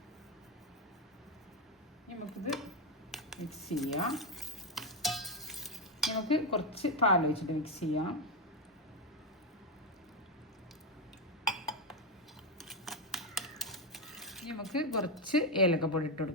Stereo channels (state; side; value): normal; both; correlation 0.07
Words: നമുക്കിത് മിക്സ് ചെയ്യാം. നമുക്ക് കുറച്ച് പാൽ ഒഴിച്ചിട്ട് മിക്സ് ചെയ്യാം. നമുക്ക് കുറച്ച് ഏലക്കപ്പൊടി ഇട്ട്